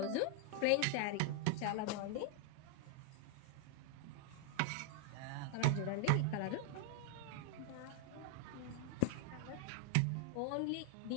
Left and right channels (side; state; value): both; different; correlation 0.00